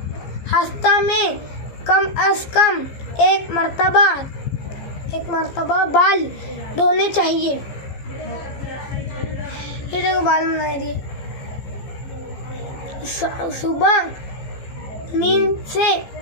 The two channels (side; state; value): right; late; 15 ms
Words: हफ्ता में कम अज़ कम एक मरतबा बाल धोने चाहिए। ये देखो बाल बना दिए। सुबह नींद से